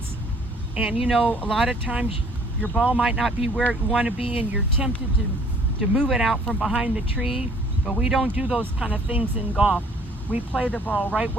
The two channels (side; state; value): both; normal; correlation 0.58